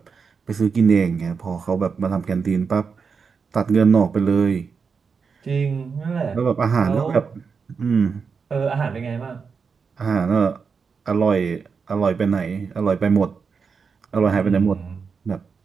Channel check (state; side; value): quieter; left; 5.6 dB